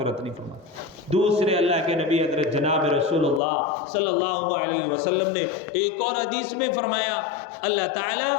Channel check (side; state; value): right; drops out; at 3.4 s